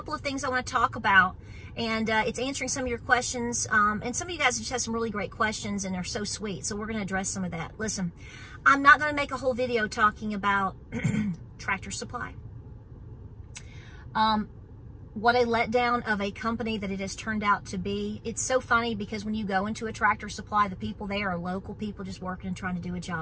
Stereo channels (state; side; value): identical; both; correlation 1.00